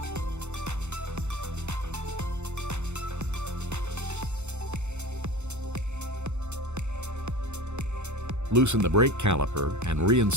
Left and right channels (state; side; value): late; left; 0.83 ms